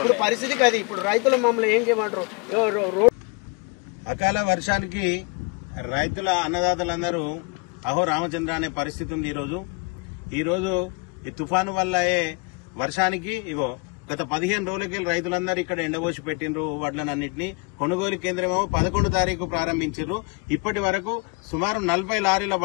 పరిస్థితి కాదు. ఇప్పుడు రైతులు మమ్మల్ని ఏం చేయమంటారు? అకాల వర్షానికి రైతుల అన్నదాతలందరూ అహో రామచంద్ర అనే పరిస్థితి ఉంది. ఈరోజు ఈ తుఫాను వల్ల వర్షానికి గత 15 రోజులకి రైతులందరూ ఇక్కడ ఎండబోసి పెట్టిండ్రు వడ్లనన్నింటినీ. కొనుగోలు కేంద్రమేమో 11 తారీఖు ప్రారంభించారు. ఇప్పటి వరకు సుమారు 40 లారీల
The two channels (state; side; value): quieter; right; 30.4 dB